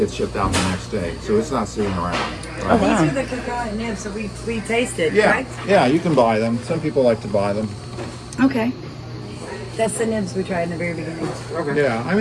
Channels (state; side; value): identical; both; correlation 1.00